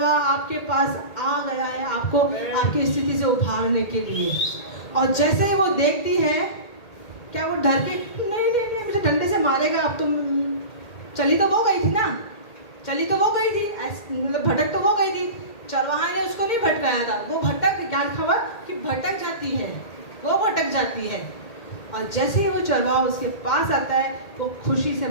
आपके पास आ गया है, आपको आपकी स्थिति से उभारने के लिए। और जैसे ही वो देखती है, क्या वो डर के नहीं नहीं नहीं मुझे डंडे से मारेगा, अब तुम चली तो वो गई थी ना, चली तो वो गई थी, मतलब भटक तो वो गई थी, चरवाहा ने उसको नहीं भटकाया था, वो भटक, ज्ञान खबर कि भटक जाती है, वो भटक जाती है। और जैसे ही वो चरवाहा उसके पास आता है वो खुशी से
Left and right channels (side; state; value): right; late; 2.1 ms